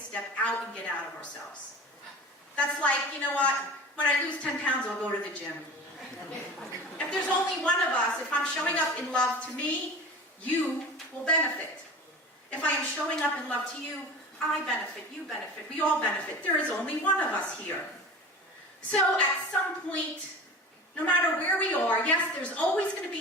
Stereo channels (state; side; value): normal; both; correlation 0.36